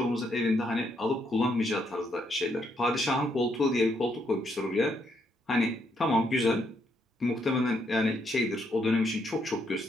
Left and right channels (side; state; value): both; normal; correlation 0.75